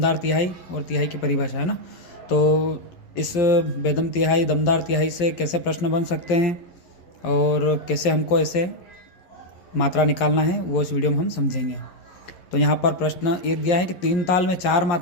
तिहाई और तिहाई की परिभाषा, है ना। तो इस बेदम तिहाई, दमदार तिहाई से कैसे प्रश्न बन सकते हैं और कैसे हमको ऐसे मात्रा निकालना है वो इस वीडियो में हम समझेंगे। तो यहाँ पर प्रश्न एक दिया है कि 3 ताल में 4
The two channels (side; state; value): right; late; 11 ms